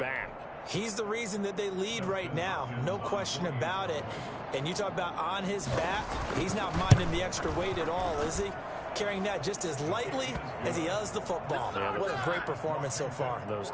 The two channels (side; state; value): both; identical; correlation 1.00